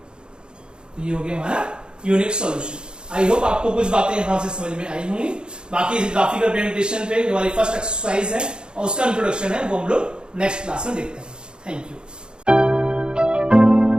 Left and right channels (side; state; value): left; late; 0.050 ms